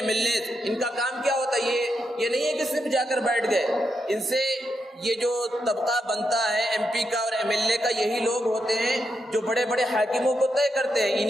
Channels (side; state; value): both; normal; correlation 0.83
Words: ملنے، ان کا کام کیا ہوتا ہے؟ یہ نہیں ہے کہ صرف جا کر بیٹھ گئے، ان سے یہ جو طبقہ بنتا ہے ایم پی کا اور ایم ایل اے کا، یہی لوگ ہوتے ہیں جو بڑے بڑے حاکموں کو طے کرتے ہیں،